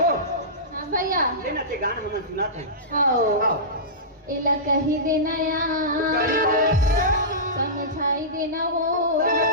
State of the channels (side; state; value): both; normal; correlation -0.18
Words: हाँ भैया ले ना ते गान हम सुना थे आओ आओ इला कही देना या समझाई देना वो